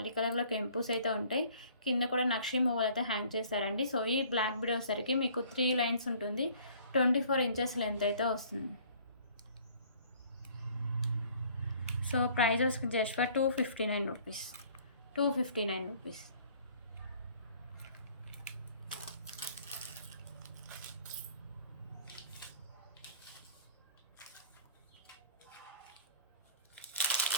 కలర్‌లో కెంపుస్ అయితే ఉంటాయి. కింద కూడా నక్షి మువ్వలు అయితే హ్యాంగ్ చేశారండి. సో, ఈ బ్లాక్ బీడ్ వచ్చేసరికి మీకు 3 లైన్స్ ఉంటుంది. 24 ఇంచెస్ లెంత్ అయితే వస్తుంది. సో, ప్రైస్ వచ్చి just for 259 rupees. 259 rupees.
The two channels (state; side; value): inverted; both; correlation -0.54